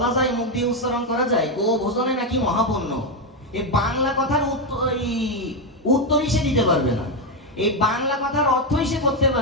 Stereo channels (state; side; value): normal; both; correlation 0.06